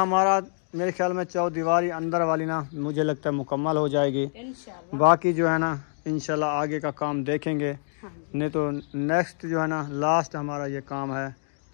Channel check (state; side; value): silent; right; digital silence